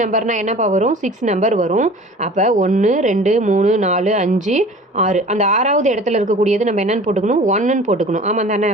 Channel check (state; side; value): normal; both; correlation 0.43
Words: நம்பர்னால் என்னப்பா வரும், 6 நம்பர் வரும். அப்போ 1 2 3 4 5 6 அந்த 6வது இடத்துல இருக்கக்கூடியது நம்ம என்னென்னு போட்டுக்கணும், 1ன்னு போட்டுக்கணும். ஆமாம் தானே,